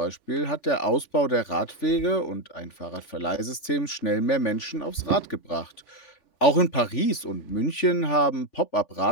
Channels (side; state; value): right; late; 3.5 ms